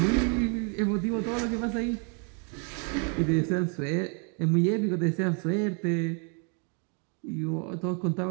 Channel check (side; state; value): left; quieter; 38.7 dB